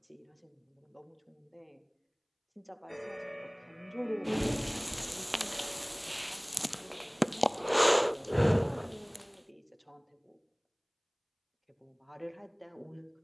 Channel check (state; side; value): identical; both; correlation 1.00